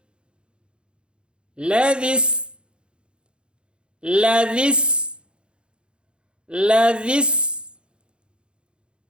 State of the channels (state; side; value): late; left; 0.054 ms